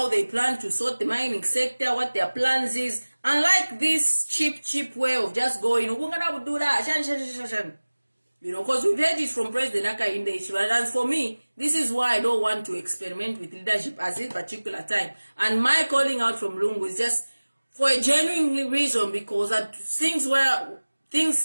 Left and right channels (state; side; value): inverted; both; correlation -1.00